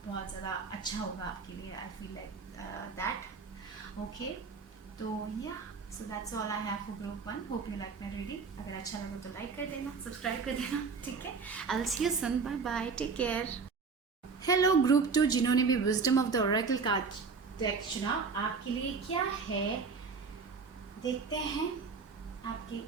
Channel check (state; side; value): quieter; left; 5.0 dB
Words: बहुत ज़्यादा अच्छा होगा आपके लिए। आई फील लाइक दैट, ओके। तो या so that's all I have for group 1. Hope you like my reading. अगर अच्छा लगा तो लाइक कर देना, सब्सक्राइब कर देना. ठीक है, I will see you soon. Bye bye, take care. Hello group 2, जिन्होंने भी wisdom of the oracle card deck चुना, आपके लिए क्या है देखते हैं.